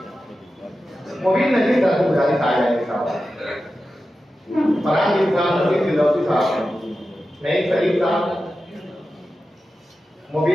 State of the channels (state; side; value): normal; both; correlation 0.92